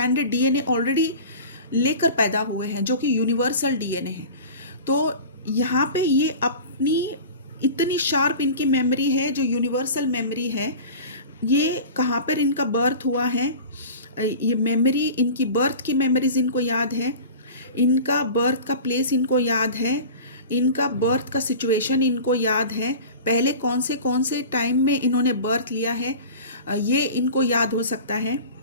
DNA already लेकर पैदा हुए हैं, जो कि यूनिवर्सल डीएनए है। तो यहाँ पे ये अपनी इतनी शार्प इनकी मेमोरी है, जो यूनिवर्सल मेमोरी है। ये कहाँ पर इनका बर्थ हुआ है, ये मेमोरी, इनकी बर्थ की मेमोरीज इनको याद है, इनका बर्थ का प्लेस इनको याद है, इनका बर्थ का सिचुएशन इनको याद है, पहले कौन से टाइम में इन्होंने बर्थ लिया है, ये इनको याद हो सकता है,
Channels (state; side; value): inverted; both; correlation -0.37